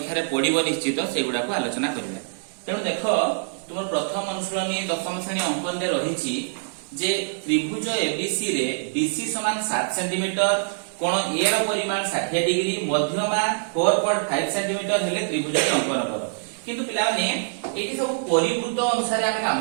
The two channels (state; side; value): silent; left; digital silence